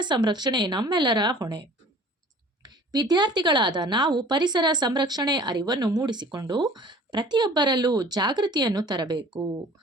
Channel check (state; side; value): normal; both; correlation 0.48